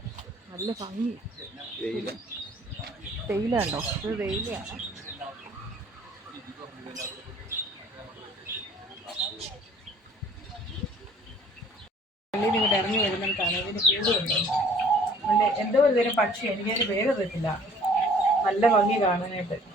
നല്ല ഭംഗി. തേയില ഉണ്ടോ, ഇത് തേയിലയാണ്. പള്ളിയിൽ ഇങ്ങോട്ട് ഇറങ്ങി വരുന്നിടത്താണ് ഇതിന് കൂടുണ്ട്. നല്ല എന്തോ ഒരു തരം പക്ഷി, എനിക്കതിന് പേര് അറിയത്തില്ല. നല്ല ഭംഗി കാണാനായിട്ട്.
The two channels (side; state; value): both; normal; correlation 0.53